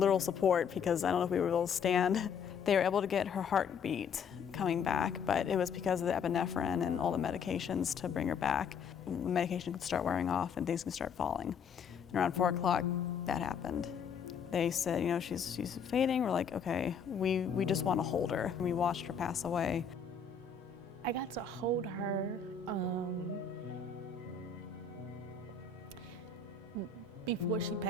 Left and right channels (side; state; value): right; quieter; 6.2 dB